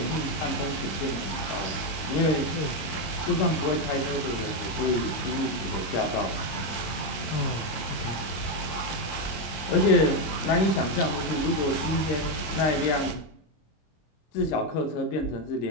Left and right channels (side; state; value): right; late; 25 ms